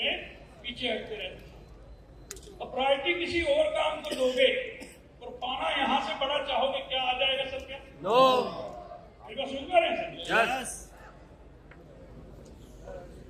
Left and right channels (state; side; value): identical; both; correlation 1.00